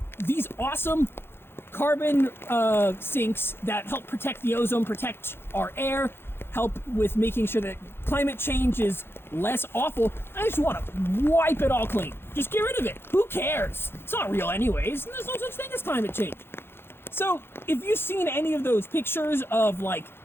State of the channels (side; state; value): right; late; 0.11 ms